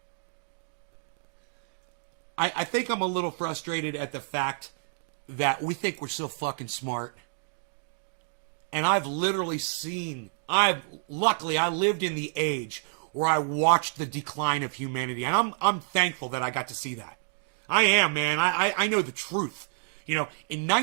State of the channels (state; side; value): silent; left; digital silence